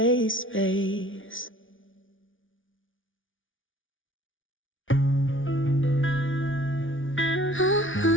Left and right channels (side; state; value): right; late; 0.57 ms